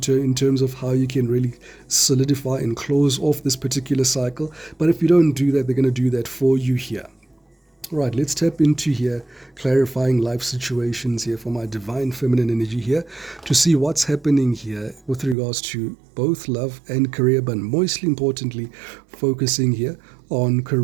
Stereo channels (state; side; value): drops out; left; at 15.4 s